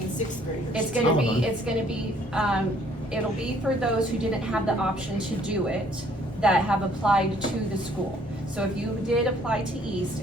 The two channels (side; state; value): both; normal; correlation 0.62